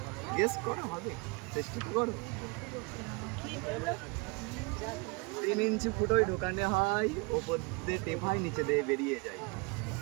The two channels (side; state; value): left; quieter; 29.3 dB